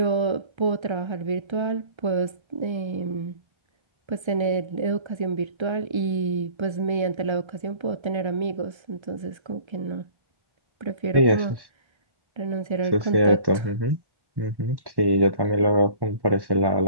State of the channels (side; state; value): left; late; 1.3 ms